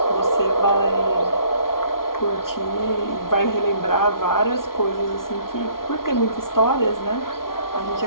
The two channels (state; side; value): late; right; 0.92 ms